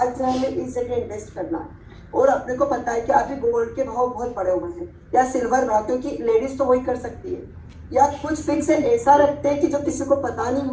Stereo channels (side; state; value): both; identical; correlation 1.00